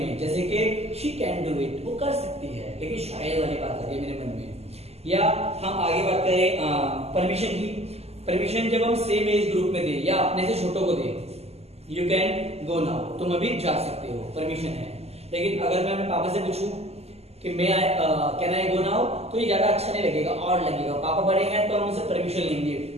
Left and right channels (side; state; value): left; late; 0.30 ms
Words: जैसे कि शी कैन डू इट, वो कर सकती है, लेकिन शायद वाली बात आ गई मेरे मन में। या हम आगे बात करें परमिशन की। परमिशन जब हम सेम एज ग्रुप में दे या अपने से छोटों को दे, यू कैन गो नाउ, तुम अभी जा सकते हो, परमिशन है। लेकिन अगर मैं अपने पापा से पूछूं कि मैं कैन आई गो नाउ, तो ये ज्यादा अच्छा नहीं लगेगा, और लगेगा। पापा बड़े हैं तो हम उनसे परमिशन लेंगे,